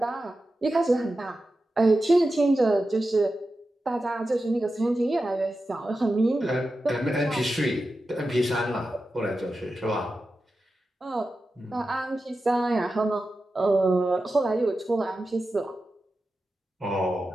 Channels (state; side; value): normal; both; correlation 0.92